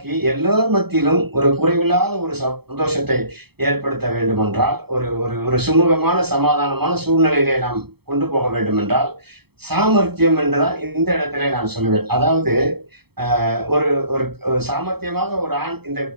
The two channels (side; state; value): left; late; 0.97 ms